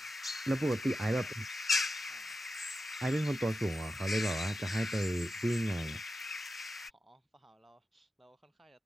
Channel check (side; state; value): both; normal; correlation 0.90